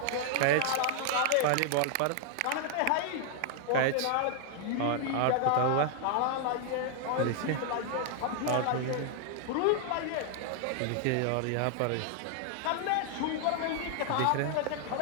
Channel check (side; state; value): both; different; correlation 0.00